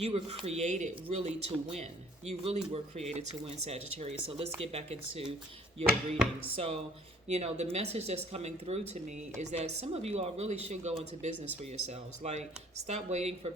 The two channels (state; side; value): normal; both; correlation 0.56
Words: were created really to win. You really were created to win, Sagittarius. So let's get back into your reading. So, the message that's coming through to me is that some of you all really should go into business for yourselves. Like, stop waiting for